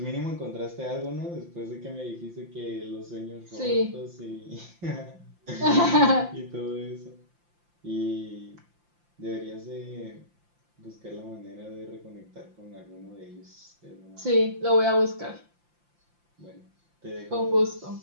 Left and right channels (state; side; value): late; left; 5.8 ms